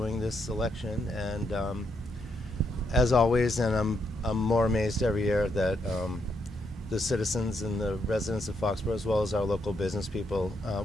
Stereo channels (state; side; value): normal; both; correlation 0.78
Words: this election, and as always, and I'm more amazed every year that the citizens and the residents of Foxborough, as well as our local business people,